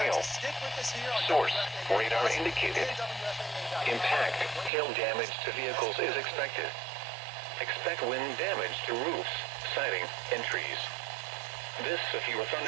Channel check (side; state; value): left; drops out; at 4.7 s